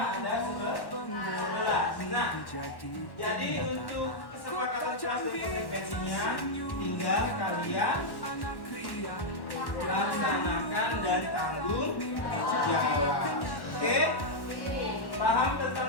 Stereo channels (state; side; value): late; right; 1.1 ms